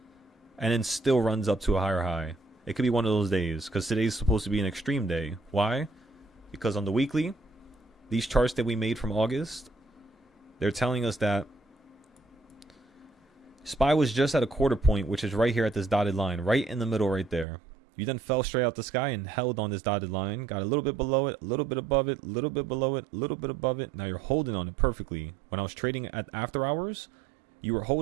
and then still runs up to a higher high. It could be one of those days because today's supposed to be an extreme day. Why? Because on the weekly, these charts that we made from August, they're telling us that SPY was just at a quarter point, which is right here at this dotted line, right in the middle right there. You then fell straight out the sky and held on this dotted line, got a little bit below it, a little bit above it, a little bit below it, a little bit above it. Now you're holding on it perfectly. When I was trading at after hours, you were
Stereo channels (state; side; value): drops out; left; at 17.4 s